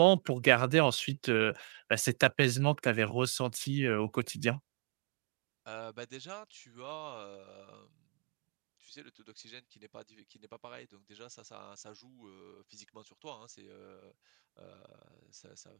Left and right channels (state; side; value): quieter; left; 34.1 dB